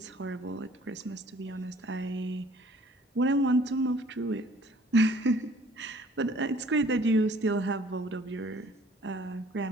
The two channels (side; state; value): both; normal; correlation 0.55